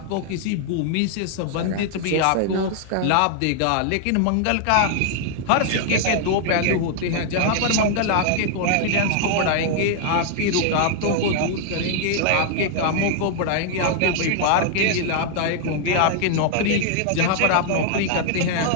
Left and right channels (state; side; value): different; both; correlation 0.00